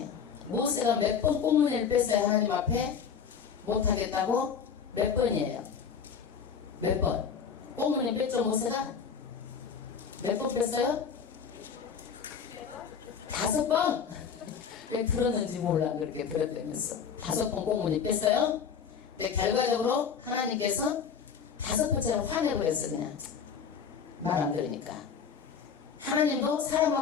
모세가 몇 번 꽁무니를 뺐어요? 하나님 앞에 못하겠다고? 몇 번이에요? 몇 번? 꽁무니 뺐죠 모세가? 몇 번 뺐어요? 5번? 왜 들었는지 몰라. 그렇게 들었다면서 5번 꽁무니 뺐어요? 근데 결과적으로 하나님께서 5번째는 화내고 그랬어. 그냥 말 안 들으니까. 하나님도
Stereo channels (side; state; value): right; quieter; 6.8 dB